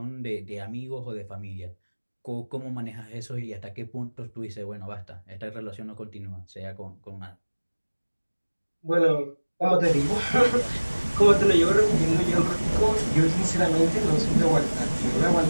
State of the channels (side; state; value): both; inverted; correlation -1.00